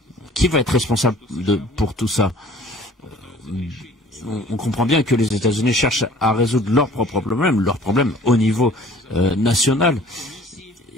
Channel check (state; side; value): normal; both; correlation 0.51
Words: Qui va être responsable pour tout ça? On comprend bien que les États-Unis cherchent à résoudre leurs problèmes au niveau national.